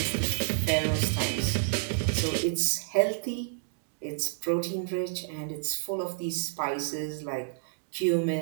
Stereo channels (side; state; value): left; silent; digital silence